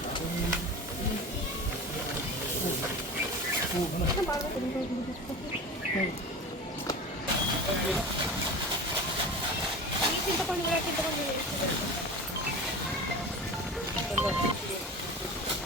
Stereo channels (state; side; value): normal; both; correlation 0.32